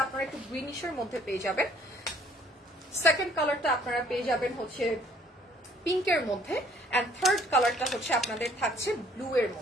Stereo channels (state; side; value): normal; both; correlation 0.60